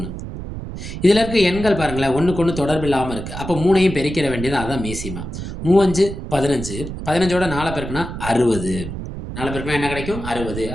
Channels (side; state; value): right; noise; rumble, 8 dB below the sound